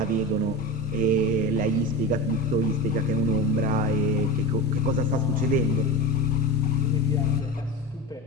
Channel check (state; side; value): normal; both; correlation 0.27